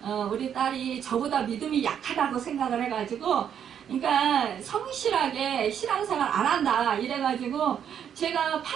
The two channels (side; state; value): left; quieter; 8.7 dB